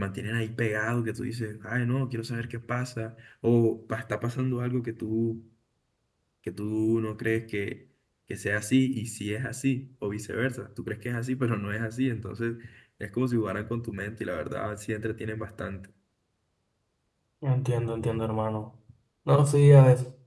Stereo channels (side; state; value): both; identical; correlation 1.00